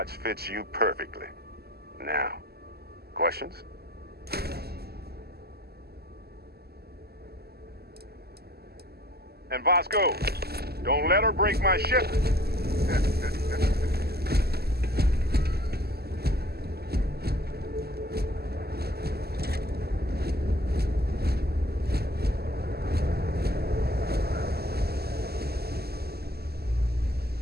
fits you perfectly. Now, questions? And Vasco, don't let her break my ship.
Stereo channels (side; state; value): left; late; 0.46 ms